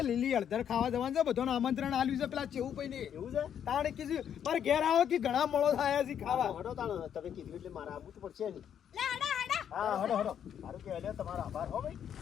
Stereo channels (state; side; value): quieter; right; 9.0 dB